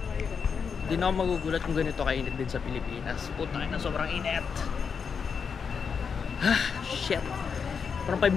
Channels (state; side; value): quieter; right; 6.2 dB